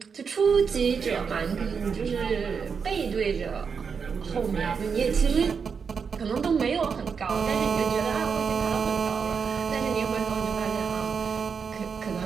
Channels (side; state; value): left; quieter; 6.0 dB